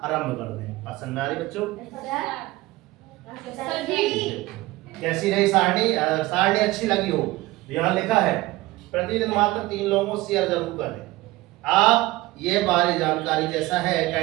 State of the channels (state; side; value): quieter; left; 19.1 dB